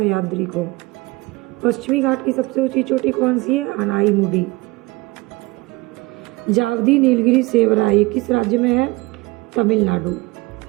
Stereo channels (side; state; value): left; quieter; 22.6 dB